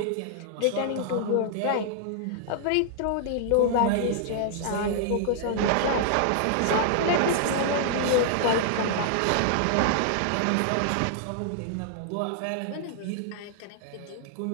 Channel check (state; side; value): different; both; correlation -0.01